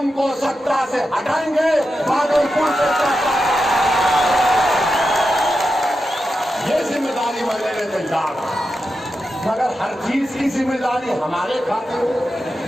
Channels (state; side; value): normal; both; correlation 0.89